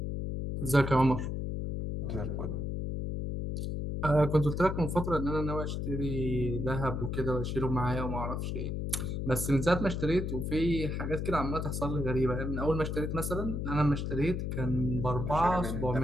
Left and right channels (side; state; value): left; noise; hum, 2 dB below the sound